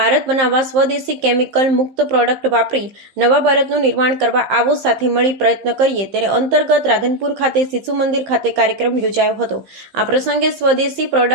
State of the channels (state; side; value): late; left; 15 ms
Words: બનાવવા, સ્વદેશી કેમિકલ મુક્ત પ્રોડક્ટ વાપરી નવા ભારતનું નિર્માણ કરવા આવો સાથે મળી પ્રયત્ન કરીએ। તેને અંતર્ગત રાધનપુર ખાતે શિશુ મંદિર ખાતે કાર્યક્રમ યોજાયો હતો। આ પ્રસંગે સ્વદેશી